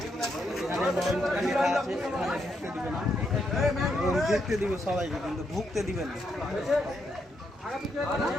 দেখতে দিবে সবাইকে, কিন্তু ঢুকতে দিবে না।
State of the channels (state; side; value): normal; both; correlation 0.79